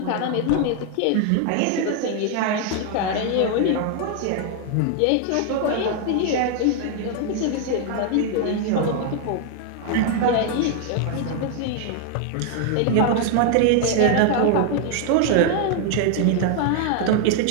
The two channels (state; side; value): different; both; correlation 0.00